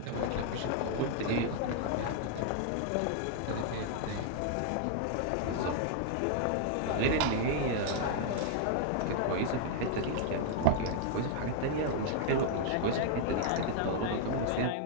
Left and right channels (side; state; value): both; different; correlation -0.01